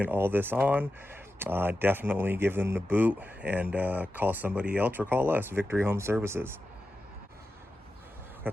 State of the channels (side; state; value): both; normal; correlation 0.92